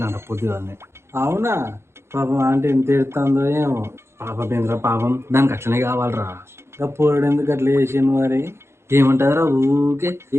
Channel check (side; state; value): left; late; 0.12 ms